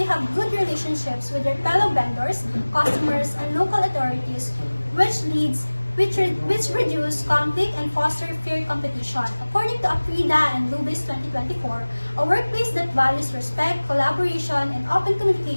have good relationships with their fellow vendors, customers, and local authorities, which reduce conflict and foster fair competition. According to Afrida and Lubis 2024, a workplace that values respect, collaboration, and open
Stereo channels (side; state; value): both; inverted; correlation -1.00